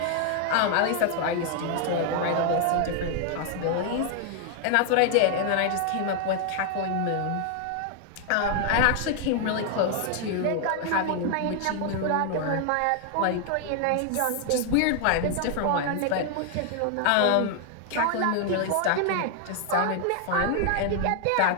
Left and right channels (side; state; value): both; different; correlation 0.00